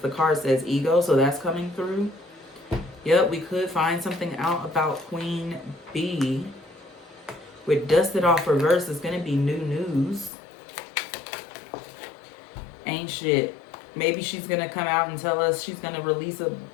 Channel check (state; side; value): drops out; right; at 10.3 s